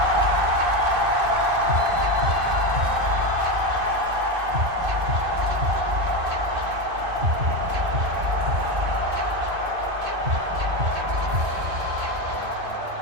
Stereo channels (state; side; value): late; left; 2.5 ms